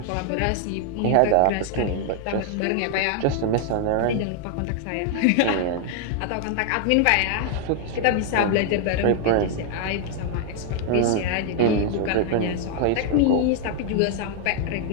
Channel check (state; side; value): different; both; correlation 0.00